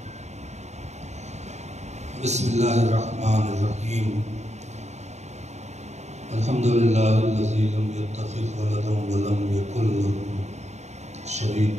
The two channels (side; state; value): left; late; 0.33 ms